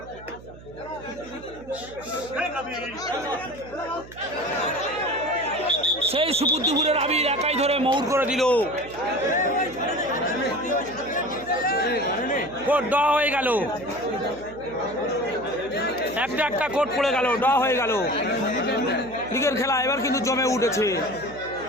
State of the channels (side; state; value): right; noise; hum, 18 dB below the sound